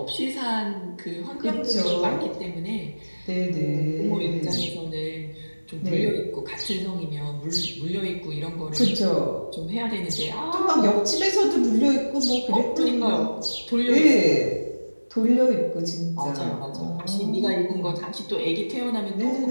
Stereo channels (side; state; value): both; inverted; correlation -1.00